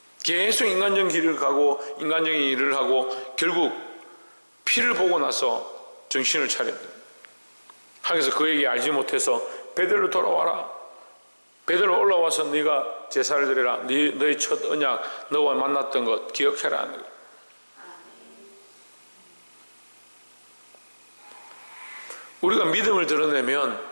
계속 인간적인 길을 가고 인간적인 일을 하고 결국 피를 보고 나서 정신을 차렸다. 하나님께서 그에게 알지 못해서 베델로 돌아와라. 베델로 올라와서 네가 제사를 드려라. 너의 첫 언약, 너와 만났던 것 기억해라. 우리가 믿음을 드러내면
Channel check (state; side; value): inverted; both; correlation -1.00